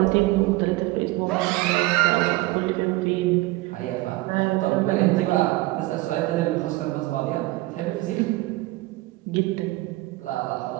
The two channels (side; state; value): left; quieter; 20.0 dB